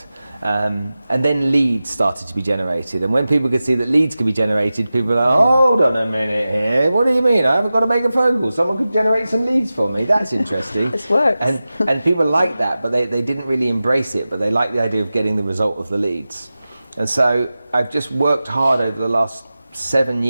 And then leads started to be generated, and when people could see that leads could be generated, people were like, hold on a minute here, what do you mean? I haven't got to make a phone call, someone could generate some leads for me, that's interesting. This works. And people liked that, but they didn't really embrace it, but they liked the idea of getting the result of the leads. And so I've just worked hard over the last 7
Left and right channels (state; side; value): inverted; both; correlation -0.95